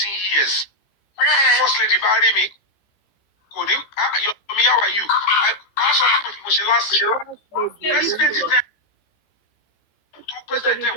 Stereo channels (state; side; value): late; right; 14 ms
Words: years. First lady bá rí mi kò ní Yomi, how are you? A sọ fún mi mo ṣe last year. President tẹ́ tó president tẹ́